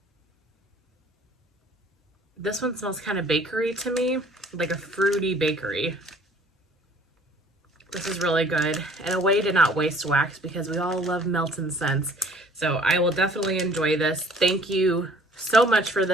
This one smells kind of bakery to me, like a fruity bakery. This is really good, and a way to not waste wax, because we all love melting scents. So I will definitely enjoy this. Thank you so much for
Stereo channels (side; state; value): both; normal; correlation 0.55